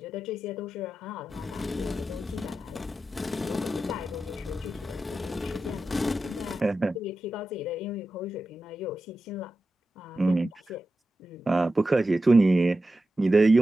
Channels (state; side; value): normal; both; correlation 0.92